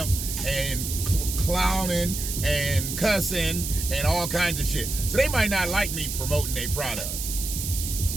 and clowning and cussing and all kinds of shit. So they might not like me promoting their product.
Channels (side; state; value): right; noise; hiss, 5 dB below the sound